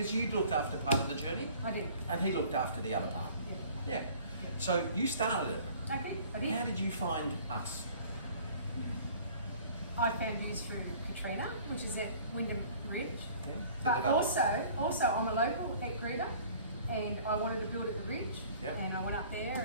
you looked after part of the journey. I did. And he looked after the other part. Yeah. So you started it. I did. How did you find us? I found you through Katrina, which is at Wyndham Ridge. Yeah. But also I'm a local at Greta, and I wanted to build at the Ridge. And I went up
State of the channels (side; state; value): both; inverted; correlation -0.51